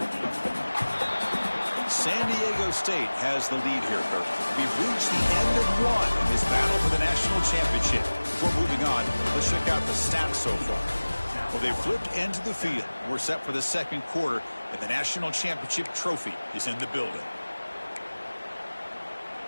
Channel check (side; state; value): both; inverted; correlation -1.00